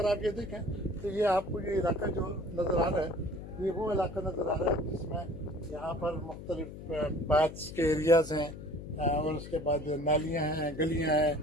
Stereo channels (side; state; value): left; noise; hum, 12 dB below the sound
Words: आप ये देखें तो ये आपको ये इलाका जो नज़र आ रहा है ये वो इलाका नज़र आ रहा है जिसमें यहाँ पर मुख्तलिफ बाथ्स के एरियाज़ हैं और उसके बाद नालियाँ हैं, गलियाँ हैं